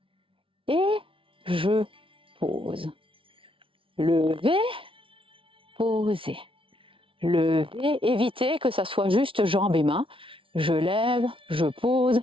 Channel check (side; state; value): left; late; 0.25 ms